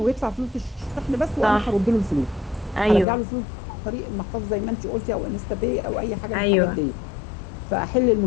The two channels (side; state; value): right; drops out; at 3.1 s